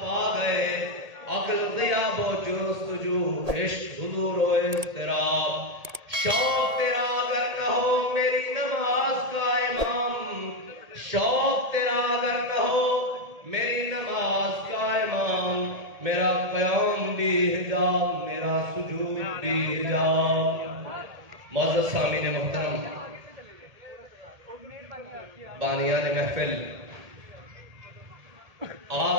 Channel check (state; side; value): late; left; 1.8 ms